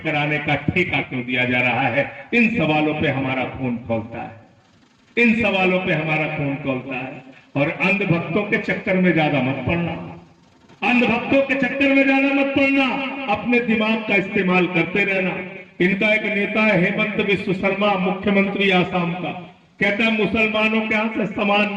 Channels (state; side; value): identical; both; correlation 1.00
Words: कराने का ठेका क्यों दिया जा रहा है। इन सवालों पे हमारा खून खौलता है, इन सवालों पे हमारा खून खौलता है। और अंधभक्तों के चक्कर में ज्यादा मत पड़ना, अंधभक्तों के चक्कर में ज्यादा मत पड़ना, अपने दिमाग का इस्तेमाल करते रहना। इनका एक नेता है हेमंत बिस्व शर्मा, मुख्यमंत्री आसाम का, कहता है मुसलमानों के यहां से सामान